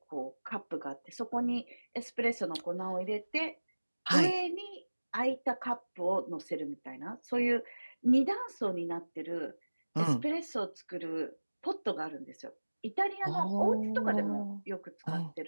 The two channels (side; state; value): both; inverted; correlation -1.00